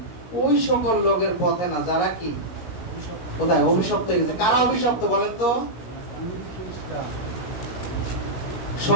ওই সকল লোকের পথে না যারা কি কোথায় অভিশপ্ত হয়ে গেছে। কারা অভিশপ্ত বলেন তো?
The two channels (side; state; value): right; late; 17 ms